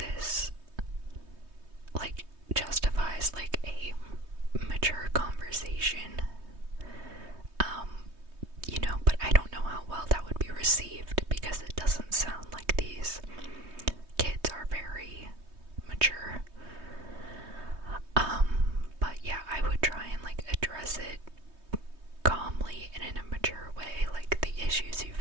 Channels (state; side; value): late; left; 3.2 ms